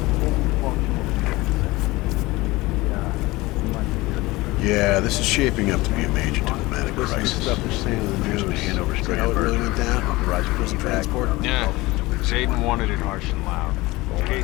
Yeah, this is shaping up to be a major diplomatic crisis. Stuff they're saying in the news. Hand over Strandberg. How it really went down? Authorized prison transport? Yeah. Zayden wanted it harsh and loud. In case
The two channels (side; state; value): right; quieter; 20.8 dB